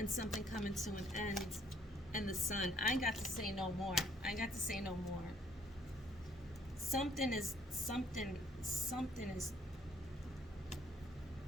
something coming to an end. And the Sun. I ain't got to say no more. I ain't got to say no more. Something is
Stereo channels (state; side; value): normal; both; correlation 0.63